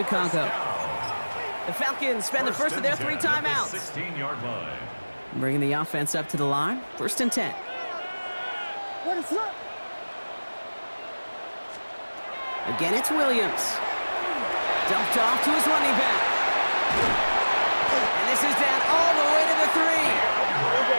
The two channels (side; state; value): both; inverted; correlation -1.00